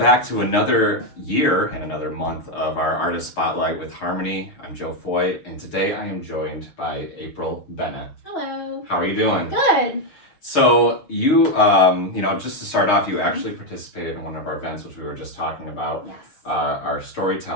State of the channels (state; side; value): late; right; 6.5 ms